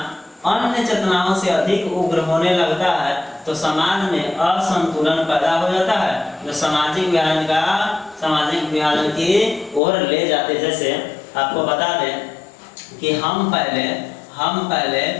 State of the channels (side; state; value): right; drops out; at 9.8 s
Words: अन्य चेतनाओं से अधिक उग्र होने लगता है तो समाज में असंतुलन पैदा हो जाता है, जो सामाजिक विभाजन की ओर ले जाते। जैसे आपको बता दें कि हम पहले